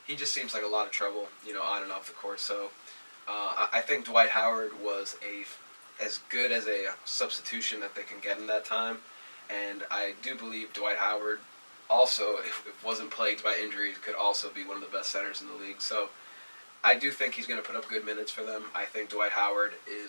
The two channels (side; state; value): both; inverted; correlation -1.00